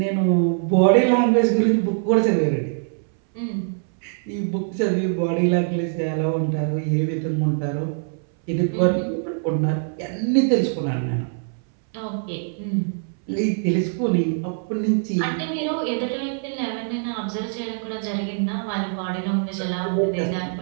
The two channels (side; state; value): left; silent; 62 dB below the other